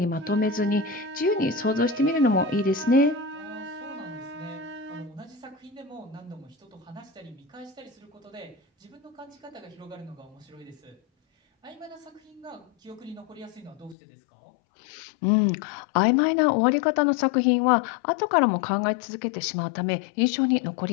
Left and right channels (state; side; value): drops out; right; at 14.0 s